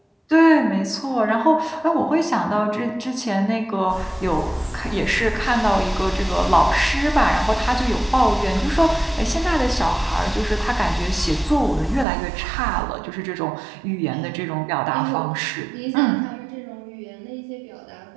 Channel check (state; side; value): drops out; left; at 12.1 s